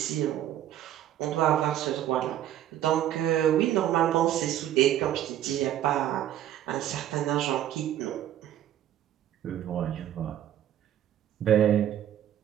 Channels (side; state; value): left; quieter; 11.7 dB